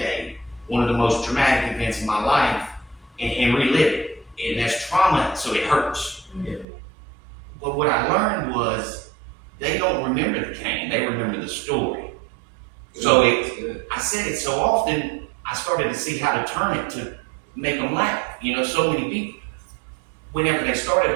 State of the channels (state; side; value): drops out; left; at 6.7 s